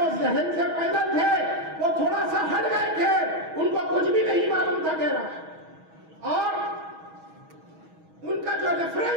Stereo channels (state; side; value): late; left; 6.3 ms